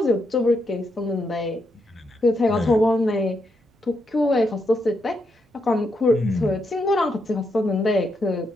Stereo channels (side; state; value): both; normal; correlation 0.80